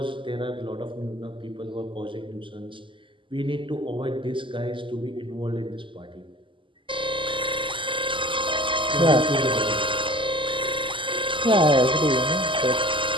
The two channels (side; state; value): left; late; 0.25 ms